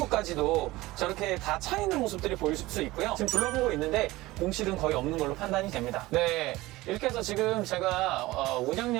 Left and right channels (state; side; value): quieter; left; 19.1 dB